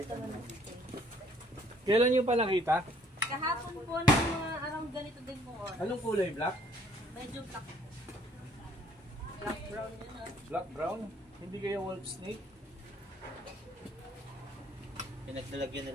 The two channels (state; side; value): normal; both; correlation 0.61